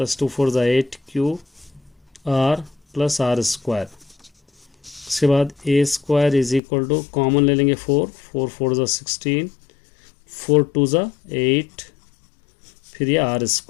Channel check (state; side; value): drops out; right; at 6.6 s